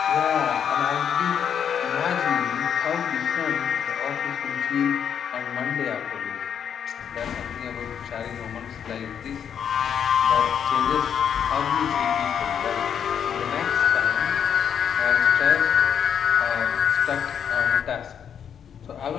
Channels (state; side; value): quieter; right; 8.2 dB